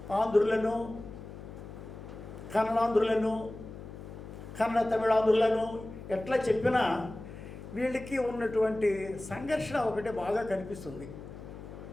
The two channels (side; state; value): left; noise; hum, 13 dB below the sound